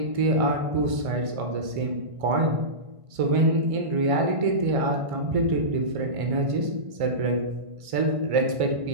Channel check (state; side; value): late; left; 1.5 ms